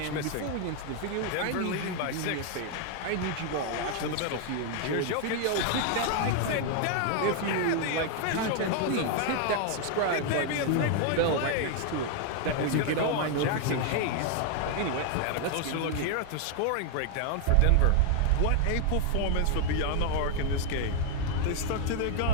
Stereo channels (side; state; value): both; different; correlation 0.00